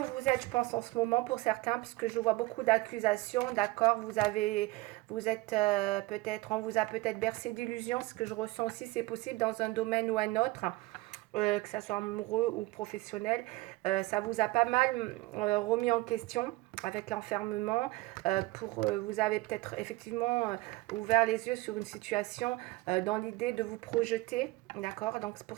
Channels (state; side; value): quieter; left; 20.6 dB